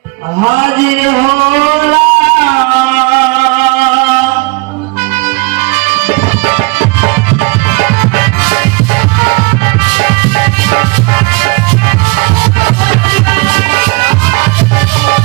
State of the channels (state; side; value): quieter; left; 27.6 dB